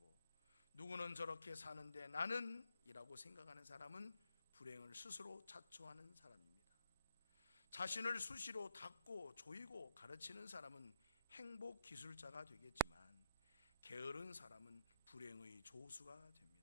누구는 저렇게 사는데 나는 이라고 생각하는 사람은 불행을 스스로 자초하는 사람입니다. 자신을 수시로 닦고 조이고 가르치는 사람은 행복 기술자가 되겠지만, 게으른 사람은 불행의 조수가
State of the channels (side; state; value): both; inverted; correlation -0.77